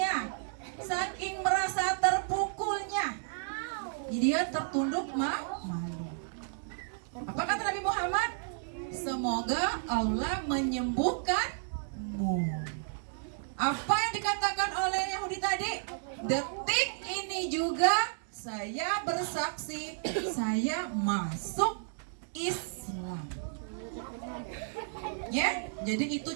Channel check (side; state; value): left; silent; digital silence